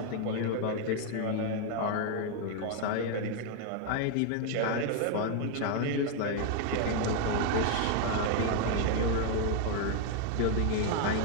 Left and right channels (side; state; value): both; different; correlation 0.00